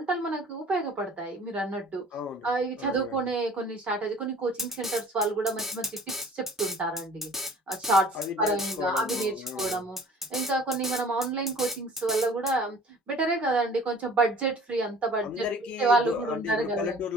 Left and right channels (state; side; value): normal; both; correlation 0.48